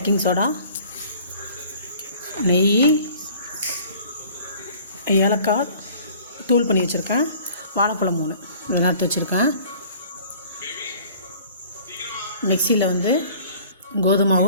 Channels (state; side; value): inverted; both; correlation -0.50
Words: சோடா, நெய், ஏலக்காய் தூள் பண்ணி வச்சுருக்கேன், வாழைப்பழம் 3 இதெல்லாம் எடுத்து வச்சுருக்கேன். மிக்சியில்